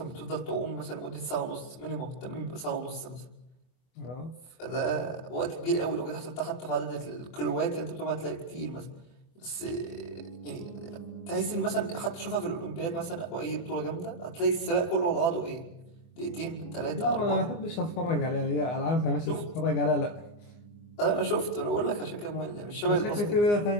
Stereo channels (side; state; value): right; late; 24 ms